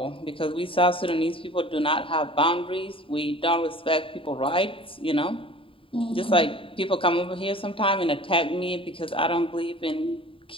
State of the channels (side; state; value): right; late; 0.26 ms